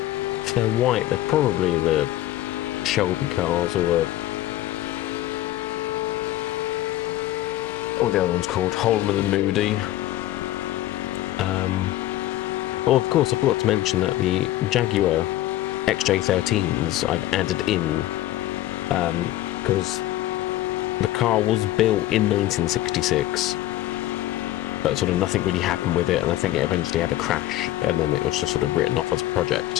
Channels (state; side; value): quieter; right; 14.8 dB